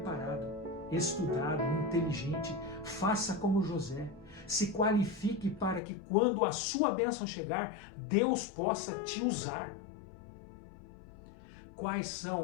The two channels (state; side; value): drops out; right; at 5.8 s